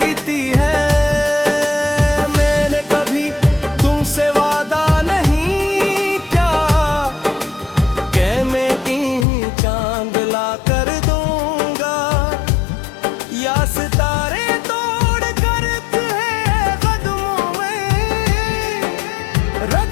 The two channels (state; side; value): drops out; right; at 9.2 s